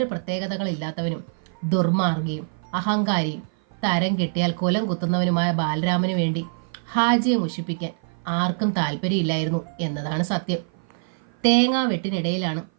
പ്രത്യേകതകളില്ലാത്തവനും ദുർമാർഗിയും അഹങ്കാരിയും തരം കിട്ടിയാൽ കുലം കുത്തുന്നവനുമായ ബാലരാമനു വേണ്ടി ഹാജിയെ മുഷിപ്പിക്കാൻ ആർക്കും താല്പര്യമില്ലായിരുന്നു എന്നതാണ് സത്യം. തേങ്ങാ വെട്ടിനിടയിലാണ്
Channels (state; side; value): silent; left; 55 dB below the other